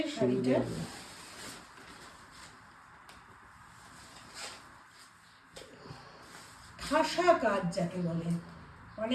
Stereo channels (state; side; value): identical; both; correlation 1.00